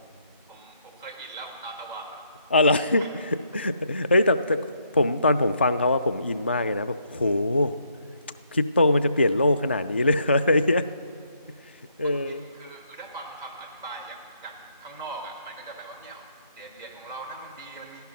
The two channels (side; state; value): both; inverted; correlation -0.72